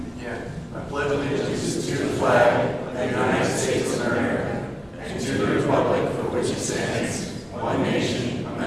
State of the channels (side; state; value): both; identical; correlation 1.00